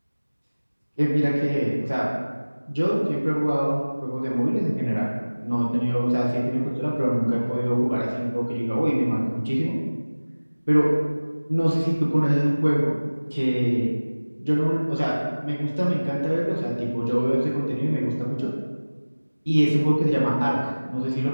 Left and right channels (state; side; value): inverted; both; correlation -1.00